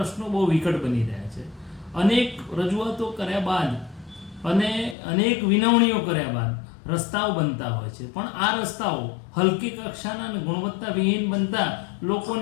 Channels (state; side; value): drops out; right; at 5.0 s